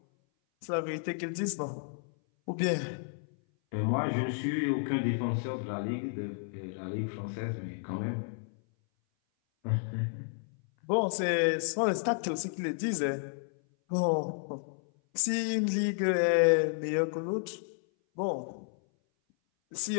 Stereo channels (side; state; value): right; silent; 57 dB below the other